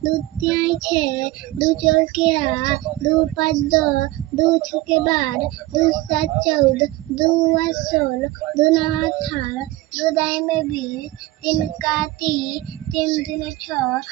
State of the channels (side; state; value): left; quieter; 18.2 dB